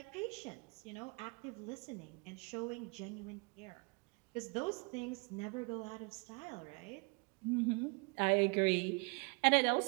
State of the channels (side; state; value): left; quieter; 32.6 dB